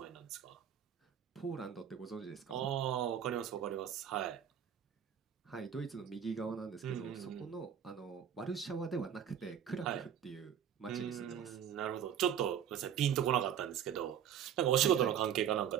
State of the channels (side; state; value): left; quieter; 9.1 dB